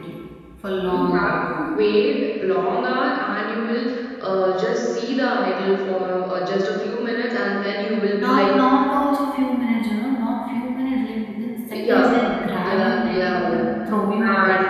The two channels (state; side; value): identical; both; correlation 1.00